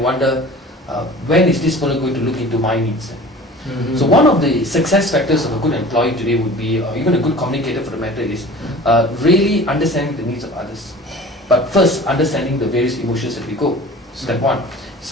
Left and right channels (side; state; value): both; normal; correlation 0.42